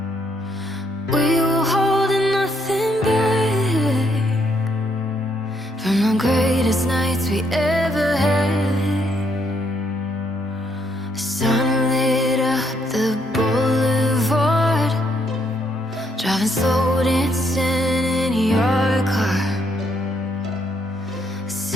We were holding nothing back from the greatest nights we ever had. Sun lit up the boulevard, driving slow, dancing in your car,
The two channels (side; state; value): both; normal; correlation 0.73